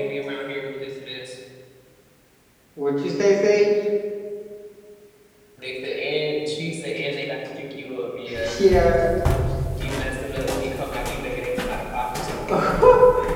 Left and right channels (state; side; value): identical; both; correlation 1.00